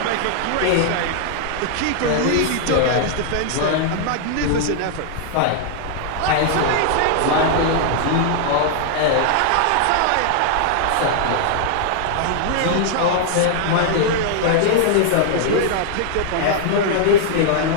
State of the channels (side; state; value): both; different; correlation 0.00